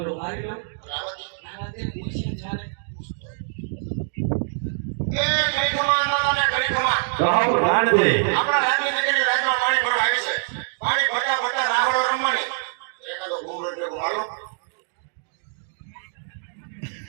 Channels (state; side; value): silent; left; digital silence